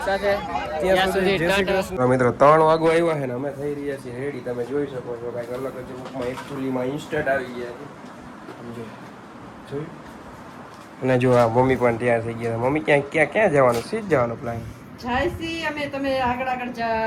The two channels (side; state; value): both; identical; correlation 1.00